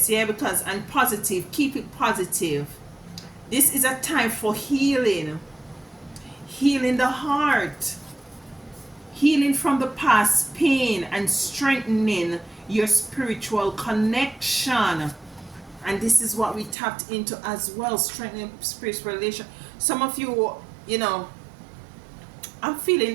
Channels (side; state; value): left; drops out; at 16.8 s